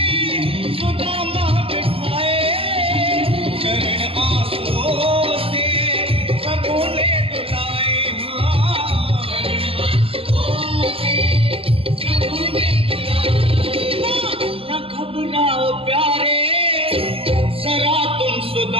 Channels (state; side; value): late; left; 0.27 ms